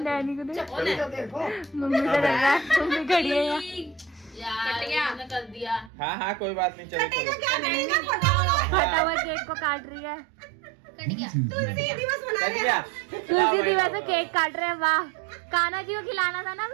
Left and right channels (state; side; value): drops out; left; at 5.9 s